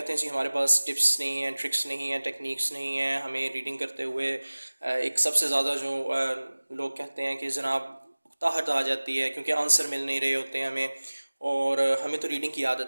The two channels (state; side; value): inverted; both; correlation -1.00